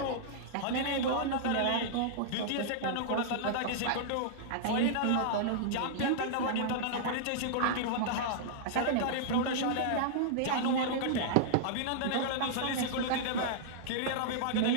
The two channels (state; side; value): different; both; correlation -0.02